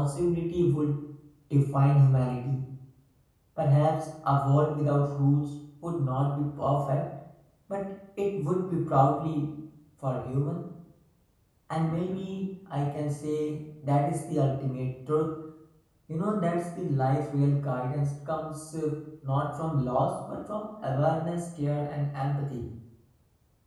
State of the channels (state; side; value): identical; both; correlation 1.00